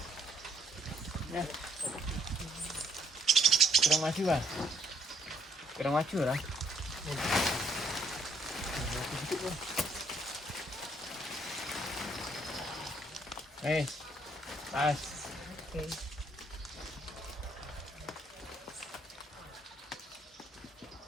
Ya. Kurang maju, Bang. Kurang maju lah. Pas. Oke.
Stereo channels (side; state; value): both; normal; correlation 0.67